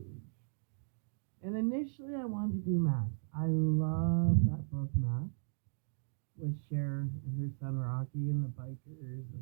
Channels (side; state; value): left; silent; digital silence